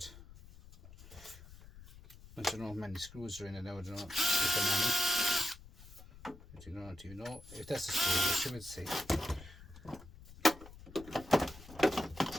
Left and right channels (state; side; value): noise; left; rumble, 18 dB below the sound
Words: I don't know how many screws are in it now. I don't know if there are many. Do you know if that's a screw? I should say.